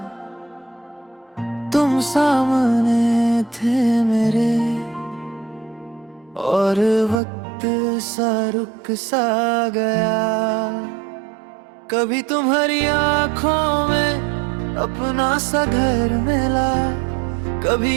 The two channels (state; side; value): drops out; left; at 7.2 s